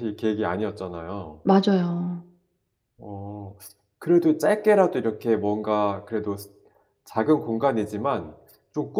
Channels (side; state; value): both; identical; correlation 1.00